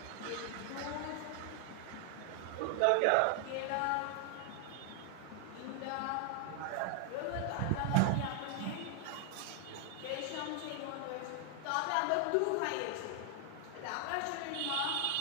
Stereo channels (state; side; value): different; both; correlation 0.00